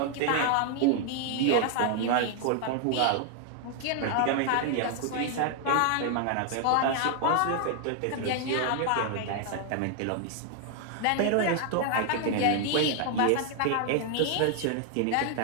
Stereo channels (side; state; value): both; different; correlation 0.00